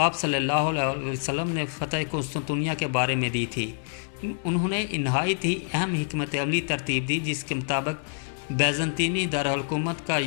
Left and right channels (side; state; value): right; silent; digital silence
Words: صلی اللہ علیہ وسلم نے فتح قسطنطنیہ کے بارے میں دی تھی۔ انہوں نے نہایت ہی اہم حکمت عملی ترتیب دی جس کے مطابق بیزنطینی دارالحکومت کا